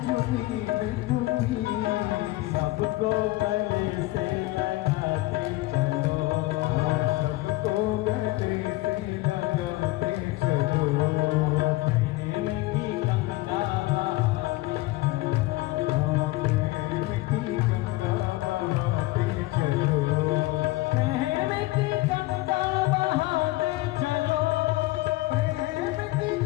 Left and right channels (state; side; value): quieter; right; 19.0 dB